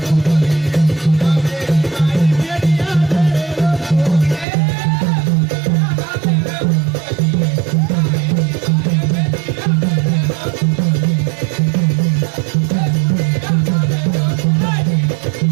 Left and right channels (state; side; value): drops out; left; at 4.5 s